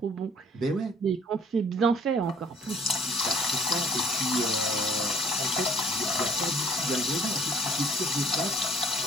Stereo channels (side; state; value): both; normal; correlation 0.56